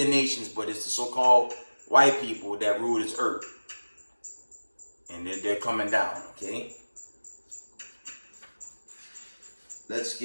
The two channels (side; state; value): both; inverted; correlation -1.00